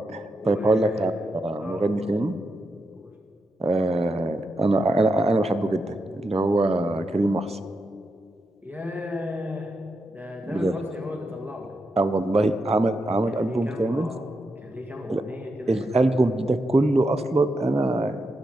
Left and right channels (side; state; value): both; normal; correlation 0.85